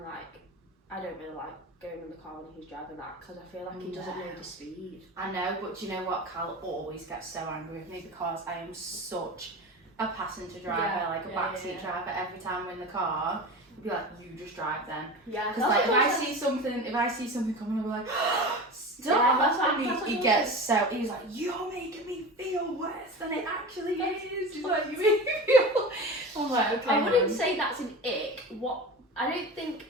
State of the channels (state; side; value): normal; both; correlation 0.30